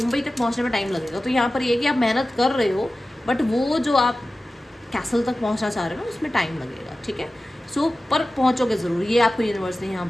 तक पहुंचने में टाइम लगेगा। तो यहाँ पर ये कि आप मेहनत कर रहे हो बट वो जो आप कैसल तक पहुंचना चाह रहे हो ना, उसमें टाइम लगेगा, ठीक है। सो पर पहुंचोगे ज़रूर, ये आपको यूनिवर्स ने यहाँ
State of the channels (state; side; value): normal; both; correlation 0.95